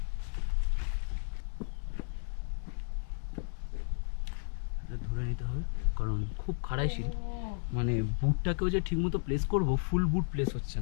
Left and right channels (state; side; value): silent; right; 56 dB below the other